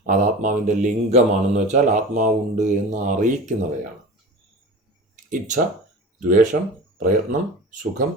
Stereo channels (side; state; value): both; normal; correlation 0.35